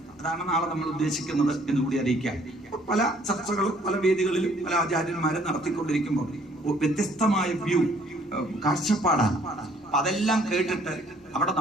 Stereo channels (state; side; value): normal; both; correlation 0.61